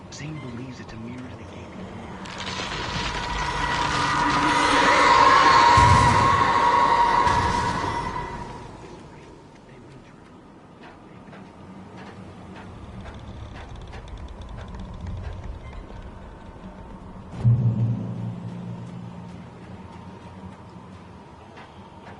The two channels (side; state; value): both; identical; correlation 1.00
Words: Zane believes it's a mirror to the game.